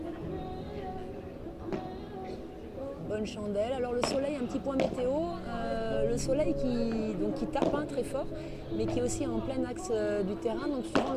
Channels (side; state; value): both; identical; correlation 1.00